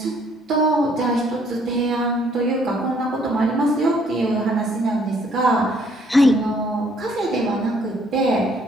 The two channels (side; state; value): both; normal; correlation 0.64